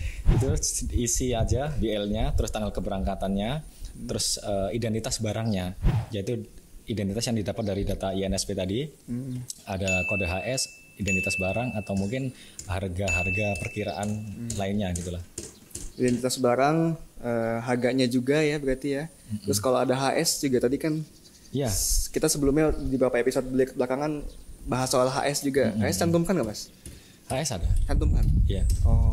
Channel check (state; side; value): identical; both; correlation 1.00